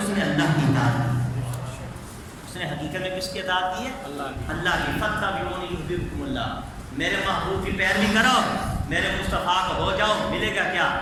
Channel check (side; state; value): both; identical; correlation 1.00